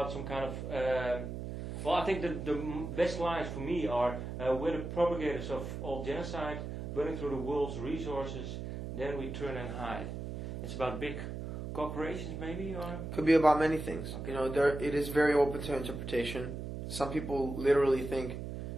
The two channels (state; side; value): noise; right; hum, 6 dB below the sound